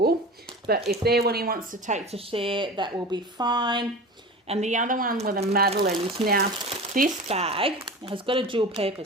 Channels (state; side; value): normal; both; correlation 0.33